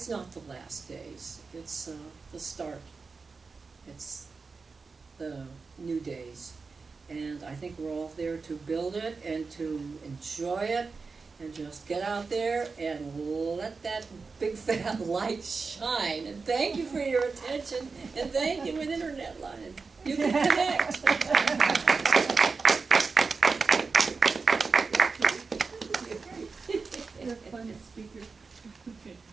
not the last days. It's the start. It's the new days. And I think we're all there to build it and to enjoy it and just get out there and let that big fat light shine. And thank you for your attention, and thank you, an internet line. You can connect. You're a fun speaker.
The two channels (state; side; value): quieter; left; 4.5 dB